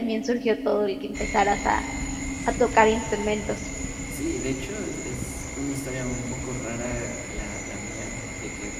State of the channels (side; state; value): both; identical; correlation 1.00